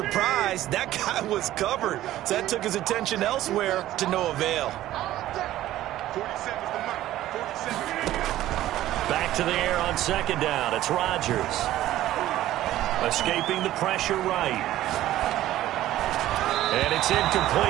that guy was covered. So that took his attention elsewhere to no avail. Back to the air on 2nd down. It's Rodgers. Escaping the pressure right. And it's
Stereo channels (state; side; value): quieter; left; 14.2 dB